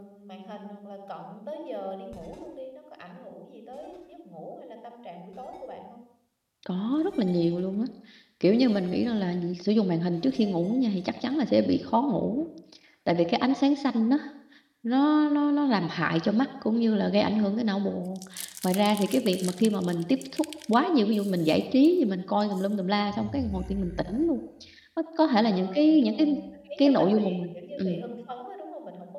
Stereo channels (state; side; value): identical; both; correlation 1.00